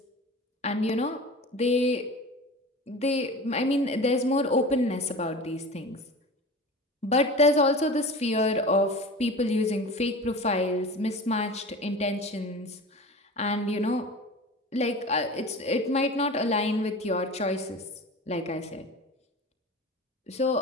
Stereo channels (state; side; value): normal; both; correlation 0.35